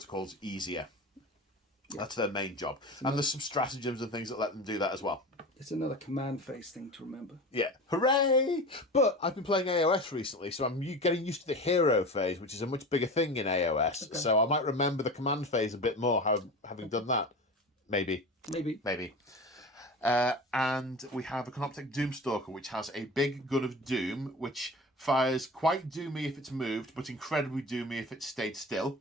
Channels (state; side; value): normal; both; correlation 0.32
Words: easier. Yeah. That's their main job. And there's some stratagems and things that let them do that as well. It's another command phase thing to remember. Yeah, hooray! But I've been playing AOS recently, so I'm getting used to the hero phase, which is a much bigger thing in AOS. Okay. So I might remember the command phase a bit more, having done that. Maybe. And we have a Canoptek Doomstalker, which has a big gun of doom, which fires quite doomy if it's moved, but incredibly doomy if it stayed still.